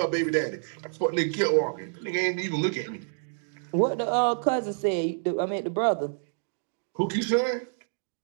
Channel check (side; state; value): left; silent; digital silence